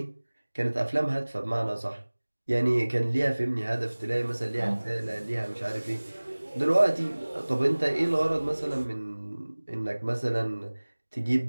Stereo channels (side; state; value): both; inverted; correlation -1.00